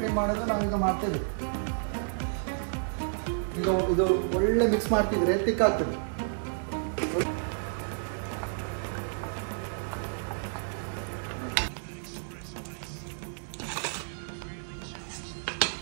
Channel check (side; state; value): left; silent; digital silence